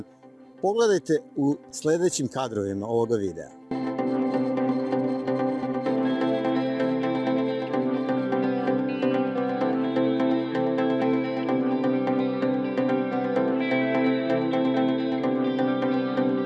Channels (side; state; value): both; identical; correlation 1.00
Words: Pogledajte u sledećim kadrovima ovoga videa.